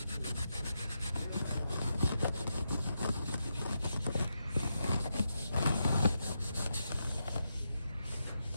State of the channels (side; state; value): both; inverted; correlation -0.85